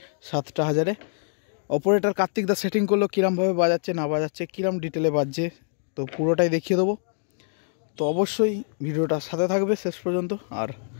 7,000-এ। অপারেটর কার্তিক দা সেটিং করলো, কীরমভাবে বাজাচ্ছে না বাজাচ্ছে, কীরম ডিটেলে বাজছে, তো পুরোটাই দেখিয়ে দেবো। তো অবশ্যই ভিডিওটা সাথে থাকবে শেষ পর্যন্ত। আর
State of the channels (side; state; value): right; silent; digital silence